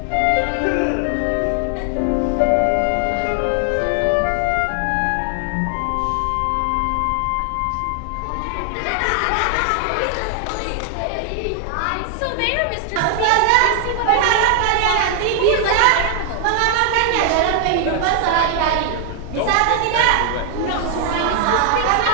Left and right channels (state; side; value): different; both; correlation 0.00